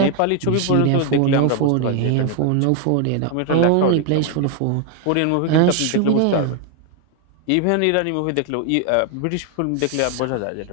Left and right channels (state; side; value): different; both; correlation 0.00